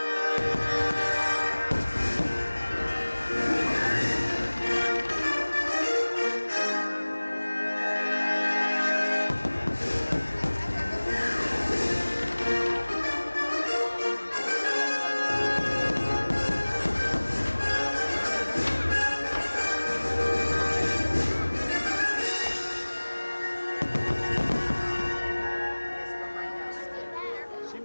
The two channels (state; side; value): inverted; both; correlation -1.00